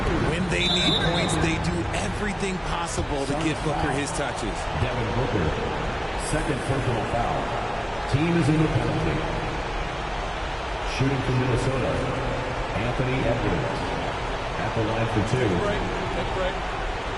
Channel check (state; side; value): identical; both; correlation 1.00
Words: When they need points, they do everything possible to get Booker his touches. Devin Booker, 2nd personal foul. Team is in the penalty. Shooting for Minnesota, Anthony Edwards at the line for two. Take a break.